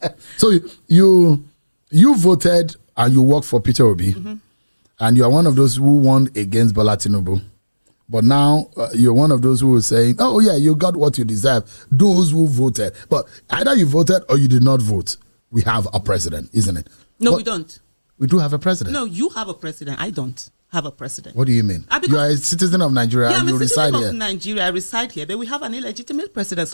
So you voted and you work for Peter Obi, and you are one of those who won against Bola Tinubu. But now you're one of those who are saying, oh, yeah, you got what you deserve. Those who voted. But either you voted or you did not vote. We have a president, isn't it? No, we don't. We do have a president. No, you have a president. I don't have a president. What do you mean? You are a citizen of Nigeria, and you reside here. Nigeria, I reside here, but we have an illegitimate president,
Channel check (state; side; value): inverted; both; correlation -1.00